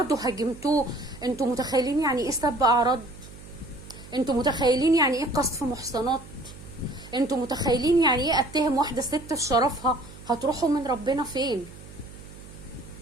هاجمتوه. انتوا متخيلين يعني ايه سب أعراض؟ انتوا متخيلين يعني ايه قذف محصنات؟ انتوا متخيلين يعني ايه اتهم واحدة ست في شرفها؟ هتروحوا من ربنا فين؟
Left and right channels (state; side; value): noise; right; hum, 18 dB below the sound